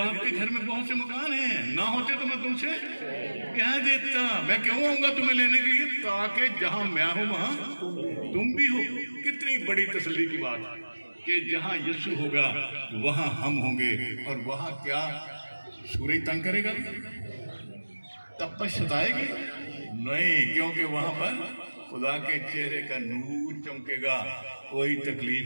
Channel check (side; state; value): both; inverted; correlation -1.00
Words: के घर में बहुत से मकान हैं, ना होते तो मैं तुमसे कह देता। मैं क्यों आऊंगा तुम्हें लेने के लिए? ताकि जहां मैं हूं वहां तुम भी हो। कितनी बड़ी तसल्ली की बात कि जहां यीशु होगा वहां हम होंगे। और वहां क्या सूरज तंग करेगा? तपश सताएगी नहीं, क्योंकि वहां पर खुदा के चेहरे का नूर चमकेगा। कोई